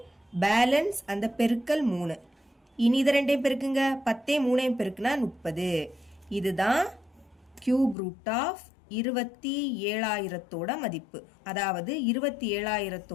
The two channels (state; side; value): drops out; right; at 8.0 s